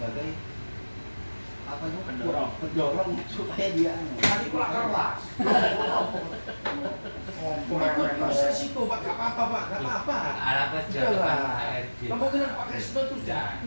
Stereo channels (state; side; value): inverted; both; correlation -1.00